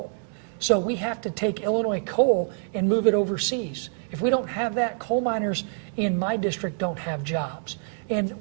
So we have to take Illinois coal and move it overseas. If we don't have that, coal miners in my district don't have jobs. And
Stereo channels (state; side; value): silent; left; 61 dB below the other